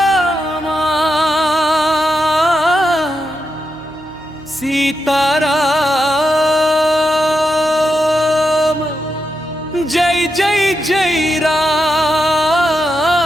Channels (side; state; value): right; noise; hum, 25 dB below the sound